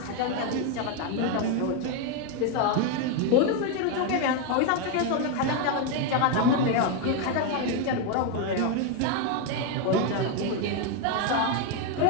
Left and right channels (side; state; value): both; different; correlation 0.01